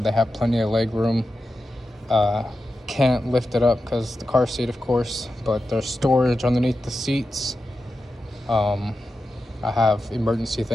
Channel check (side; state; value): both; normal; correlation 0.90